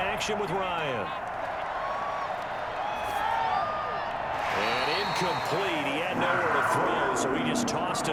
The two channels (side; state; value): both; identical; correlation 1.00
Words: with Ryan. And incomplete. He had nowhere to throw, so he just tossed